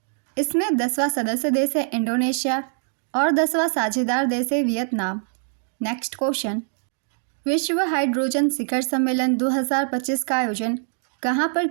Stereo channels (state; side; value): silent; left; digital silence